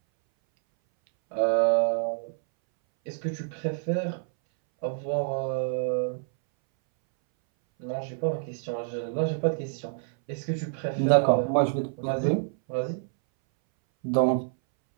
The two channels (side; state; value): left; silent; 60 dB below the other